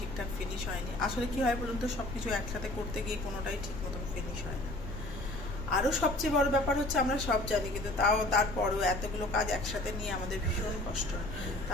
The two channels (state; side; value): noise; left; rumble, 7 dB below the sound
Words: ফিনিশ হয়নি। আসলে কি হয় বলুন তো, সব কিছু একসাথে করতে গিয়ে কোনোটাই ঠিক মতন ফিনিশ হয় না। আরও সবচেয়ে বড় ব্যাপার হচ্ছে, আমরা সব জানি কিন্তু তারপরেও এতগুলো কাজ একসাথে নিয়ে আমাদের ভীষণ কষ্ট হয়।